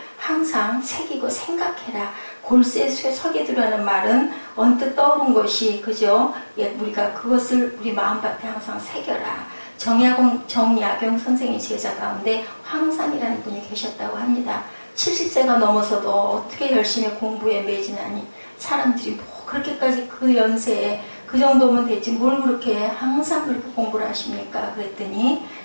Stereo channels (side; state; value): both; inverted; correlation -1.00